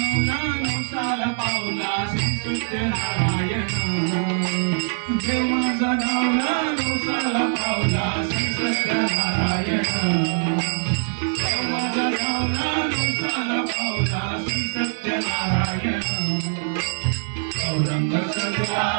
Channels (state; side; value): silent; left; 63 dB below the other